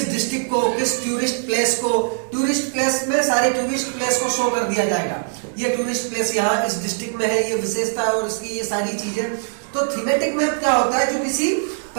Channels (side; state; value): left; silent; 65 dB below the other